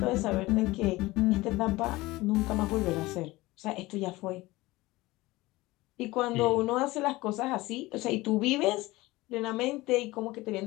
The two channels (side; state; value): right; quieter; 19.9 dB